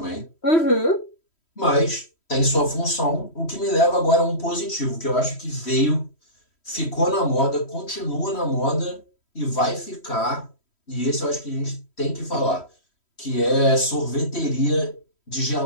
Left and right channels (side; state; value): right; late; 3.1 ms